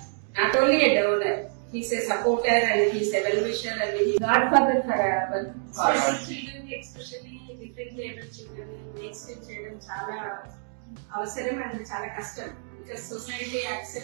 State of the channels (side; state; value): left; silent; 60 dB below the other